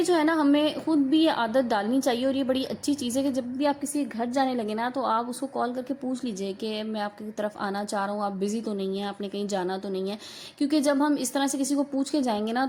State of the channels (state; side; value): identical; both; correlation 1.00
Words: جو ہے نا ہمیں خود بھی یہ عادت ڈالنی چاہیے. اور یہ بڑی اچھی چیز ہے کہ جب بھی آپ کسی گھر جانے لگے نا تو آپ اس کو کال کر کے پوچھ لیجئے کہ میں آپ کی طرف آنا چاہ رہا ہوں, آپ بزی تو نہیں ہیں, آپ نے کہیں جانا تو نہیں ہے. کیونکہ جب ہم اس طرح سے کسی کو پوچھ کے جائیں گے نا